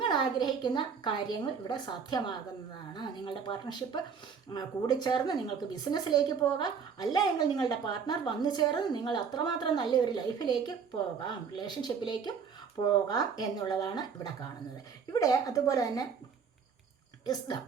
ആഗ്രഹിക്കുന്ന കാര്യങ്ങൾ ഇവിടെ സാധ്യമാകുന്നതാണ്. നിങ്ങളുടെ പാർട്ട്ണർഷിപ്പ് കൂടിച്ചേർന്ന് നിങ്ങൾക്ക് ബിസിനസ്സിലേക്ക് പോകാം, അല്ല എങ്കിൽ നിങ്ങളുടെ പാർട്ട്ണർ വന്നു ചേർന്ന് നിങ്ങൾ അത്രമാത്രം നല്ലൊരു ലൈഫിലേക്ക് പോകാം, റിലേഷൻഷിപ്പിലേക്കും പോകാം എന്നുള്ളതാണ് ഇവിടെ കാണുന്നത്. ഇവിടെ അതുപോലെ തന്നെ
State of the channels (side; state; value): left; quieter; 6.3 dB